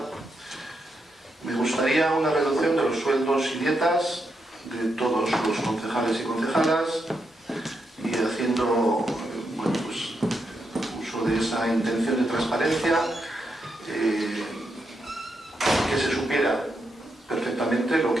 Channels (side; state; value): both; normal; correlation 0.82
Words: Me gustaría una reducción de los sueldos y dietas de todos los concejales y concejalas y haciendo bueno, pues, uso de esa intención de transparencia, que se supiera perfectamente lo